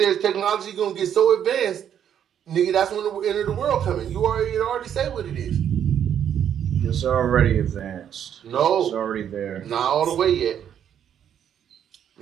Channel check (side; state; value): left; quieter; 9.3 dB